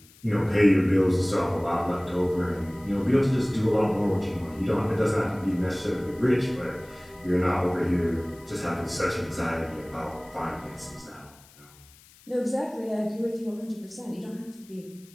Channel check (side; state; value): left; noise; hiss, 26 dB below the sound